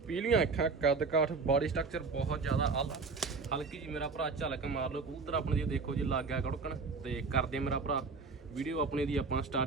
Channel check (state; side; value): quieter; left; 4.4 dB